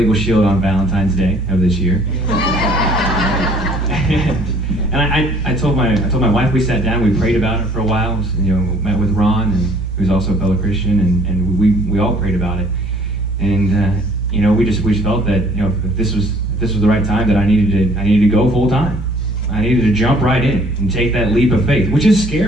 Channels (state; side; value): normal; both; correlation 0.58